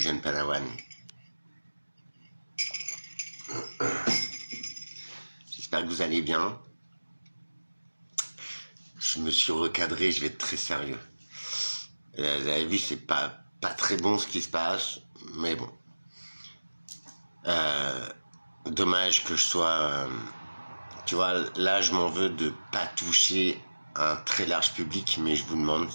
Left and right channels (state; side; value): inverted; both; correlation -1.00